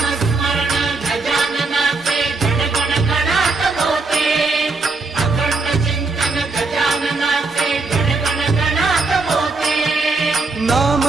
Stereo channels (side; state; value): left; quieter; 3.8 dB